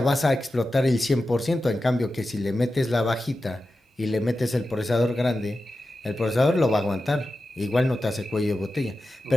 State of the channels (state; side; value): normal; both; correlation 0.92